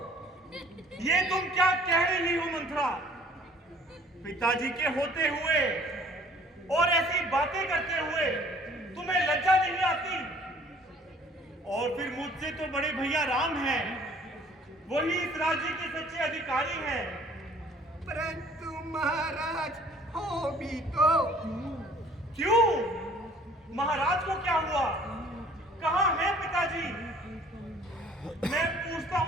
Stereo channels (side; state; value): both; normal; correlation 0.55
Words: ये तुम क्या कह रही हो मंत्रा? पिताजी के होते हुए और ऐसी बातें करते हुए तुम्हें लज्जा नहीं आती? और फिर मुझसे तो बड़े भैया राम हैं, वही इस राज्य के सच्चे अधिकारी हैं। परंतु महाराज हो भी तो। क्यों? महाराज को क्या हुआ? कहाँ है पिताजी? मैं पूछता